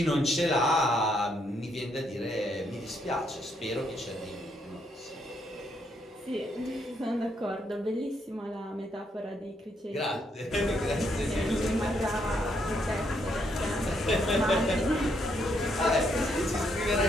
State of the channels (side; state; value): both; normal; correlation 0.74